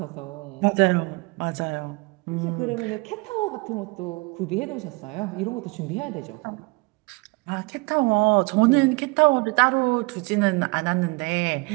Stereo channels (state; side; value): quieter; left; 27.4 dB